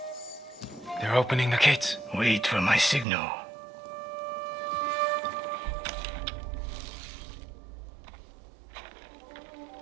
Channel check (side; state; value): left; drops out; at 3.1 s